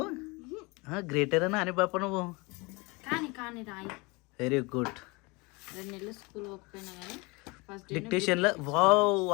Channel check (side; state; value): right; quieter; 26.5 dB